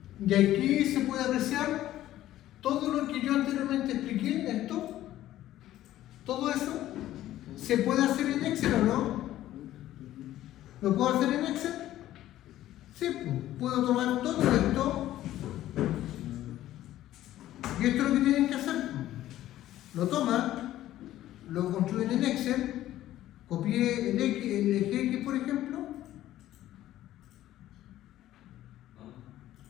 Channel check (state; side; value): quieter; right; 13.8 dB